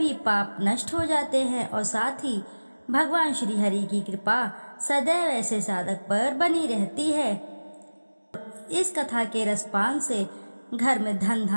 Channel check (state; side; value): inverted; both; correlation -1.00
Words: पाप नष्ट हो जाते हैं और साथ ही भगवान श्री हरि की कृपा सदैव ऐसे साधक पर बनी रहती है। इस कथा के रसपान से घर में धन